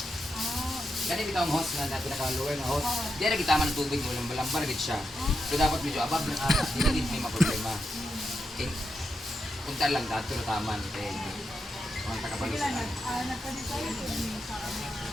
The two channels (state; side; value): normal; both; correlation 0.86